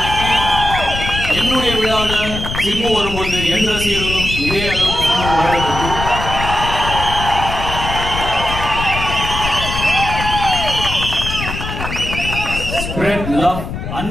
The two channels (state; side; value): noise; left; rumble, 6 dB below the sound